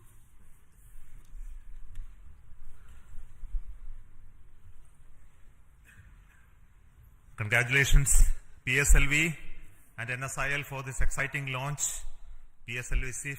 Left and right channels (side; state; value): both; identical; correlation 1.00